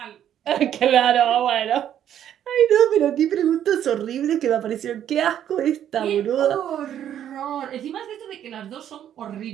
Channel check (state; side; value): quieter; left; 10.4 dB